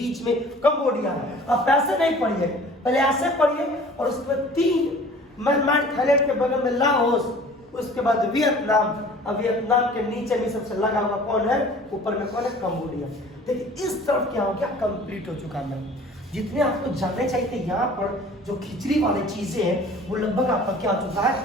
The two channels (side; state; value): both; normal; correlation 0.47